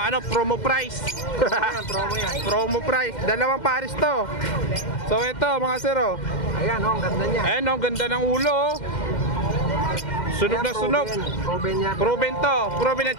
promo price. Promo yan. Promo price. Dalawang pares to. So ito, mga sir, oh. Ayan oh, ang ganda niya. Ayan, oh, ganda ng ulo, oh. Sunog na sunog. Proven yan. Proven to. Proven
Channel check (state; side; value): late; right; 2.1 ms